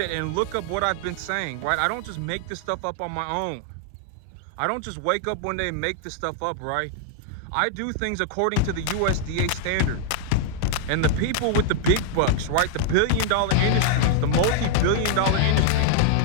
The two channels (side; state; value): both; different; correlation -0.01